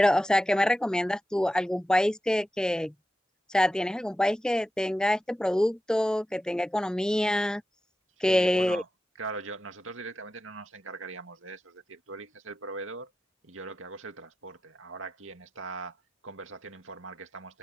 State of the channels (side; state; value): both; normal; correlation 0.92